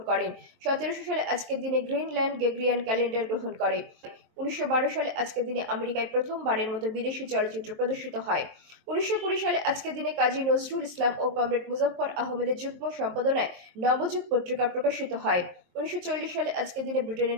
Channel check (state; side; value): late; left; 23 ms